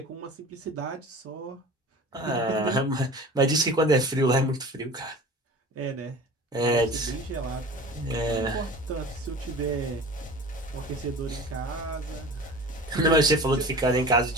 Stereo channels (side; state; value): both; normal; correlation 0.38